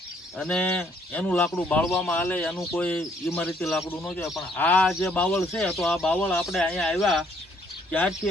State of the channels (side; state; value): both; normal; correlation 0.66